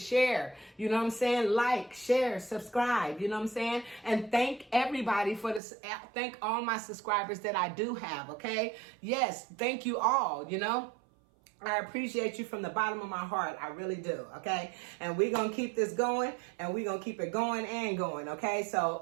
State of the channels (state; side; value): drops out; left; at 5.6 s